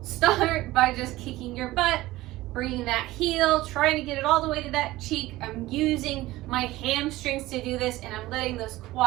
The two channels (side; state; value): left; quieter; 17.7 dB